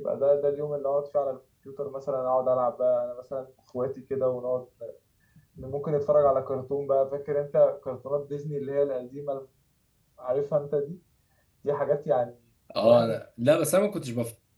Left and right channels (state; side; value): identical; both; correlation 1.00